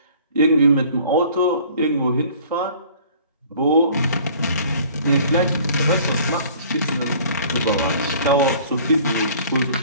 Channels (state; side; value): inverted; both; correlation -0.51